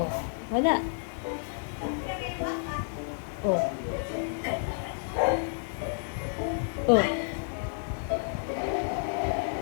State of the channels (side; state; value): right; silent; 58 dB below the other